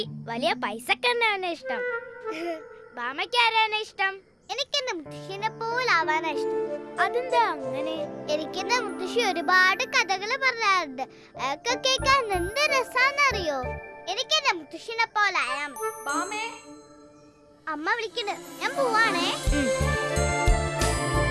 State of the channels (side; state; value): both; identical; correlation 1.00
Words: വലിയ പൈസക്കാരനാണ് ഇഷ്ടം. ബാമയ്ക്ക് ആരാണ് ഇഷ്ടം? എനിക്ക് എന്റെ മുത്തശ്ശിനെ പോലാവാനാ ഇഷ്ടം. അതെന്താ അങ്ങനെ? എനിക്ക് എന്റെ മുത്തശ്ശി ഒരുപാട് കഥകള് പറയാറുണ്ട്. അതൊക്കെ കേൾക്കാൻ എന്ത് രസാന്നറിയോ. എനിക്ക് എന്റെ മുത്തശ്ശിനെ പോലായാ മതി. അമ്മ വിളിക്കുന്നു, ഞാൻ പോവാണേ.